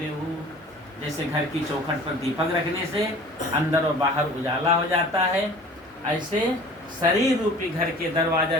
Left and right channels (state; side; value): normal; both; correlation 0.45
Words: हो। जैसे घर की चौखट पर दीपक रखने से अंदर और बाहर उजाला हो जाता है, ऐसे शरीर रूपी घर के दरवाजा,